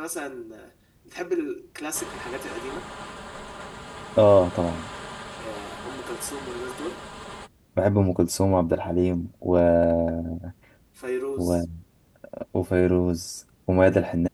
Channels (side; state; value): both; identical; correlation 1.00